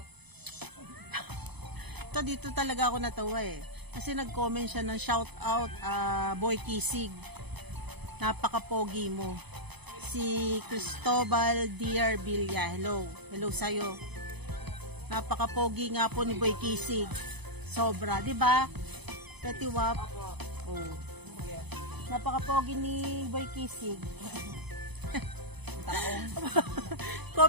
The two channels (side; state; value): left; late; 0.99 ms